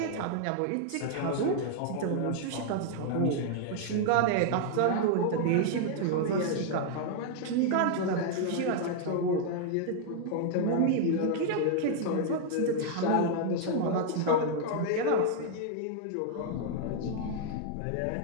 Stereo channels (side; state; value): both; different; correlation 0.00